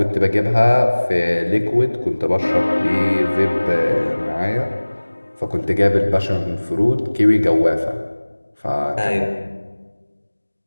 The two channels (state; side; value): inverted; both; correlation -1.00